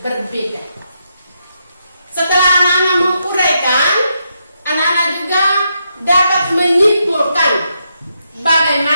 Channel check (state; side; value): inverted; both; correlation -0.81